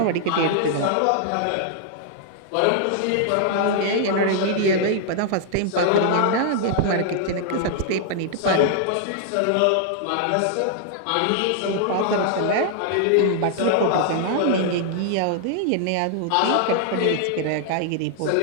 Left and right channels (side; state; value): both; different; correlation -0.01